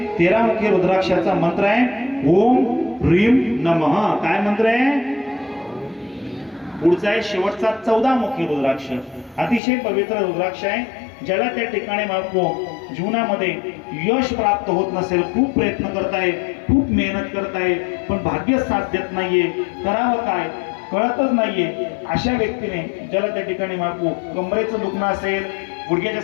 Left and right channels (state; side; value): drops out; right; at 9.6 s